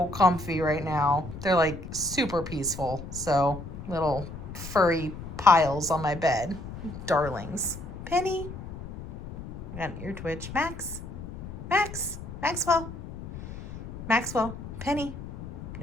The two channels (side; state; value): left; noise; rumble, 11 dB below the sound